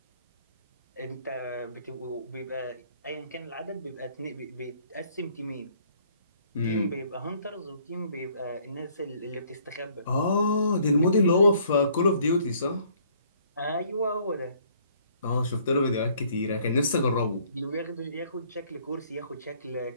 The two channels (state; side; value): inverted; both; correlation -0.62